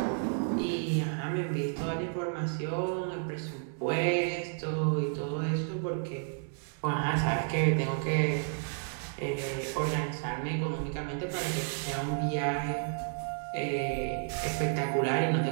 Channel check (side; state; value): left; silent; 57 dB below the other